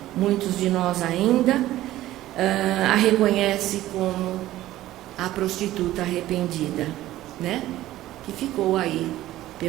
Muitos de nós ainda a reconhecem como a prostituta arrependida, né? Que ficou aí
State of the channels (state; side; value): quieter; left; 15.0 dB